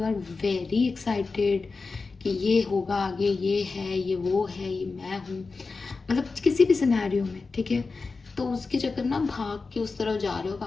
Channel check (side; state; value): right; quieter; 4.2 dB